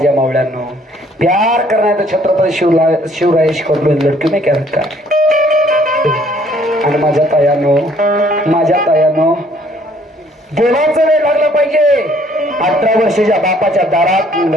मावळ्यांनो, प्यार करना है तो छत्रपती शिवरायेश कबूल लडकी में क्या रखा है. आणि माझ्या तायानो देवाचं वेळ लागलं पाहिजे. 18 वर्ष ज्या बापाच्या दारात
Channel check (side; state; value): both; normal; correlation 0.61